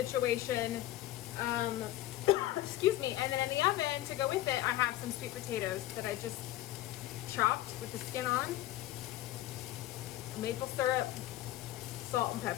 Excuse me. And then in the oven to go with it, I have some sweet potatoes that I just chopped with the skin on, maple syrup, salt and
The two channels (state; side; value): quieter; right; 15.0 dB